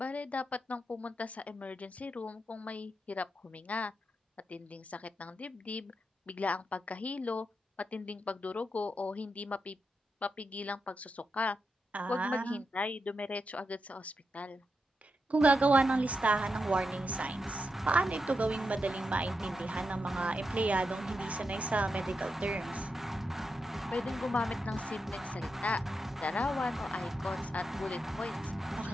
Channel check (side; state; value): both; normal; correlation 0.86